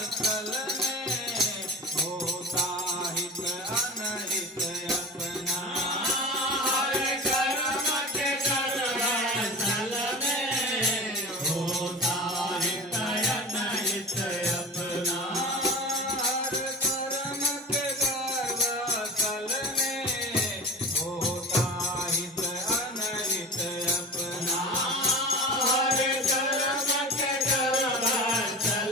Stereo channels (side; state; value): both; normal; correlation 0.35